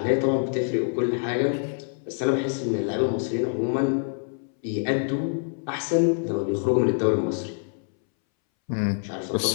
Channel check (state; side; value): silent; right; 61 dB below the other